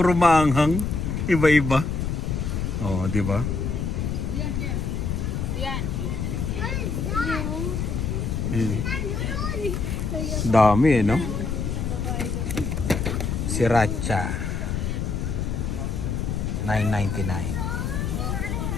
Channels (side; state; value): left; noise; rumble, 1 dB below the sound